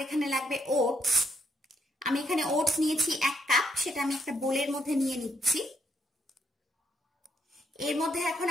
এখানে লাগবে ওটস। আমি এখানে ওটস নিয়েছি 1 কাপ, সেটা আমি একটা বোলের মধ্যে নিয়ে নিচ্ছি। এর মধ্যে এখন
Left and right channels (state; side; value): normal; both; correlation 0.75